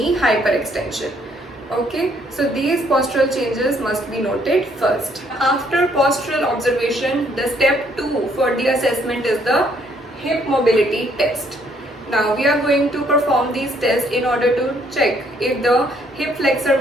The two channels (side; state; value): both; normal; correlation 0.67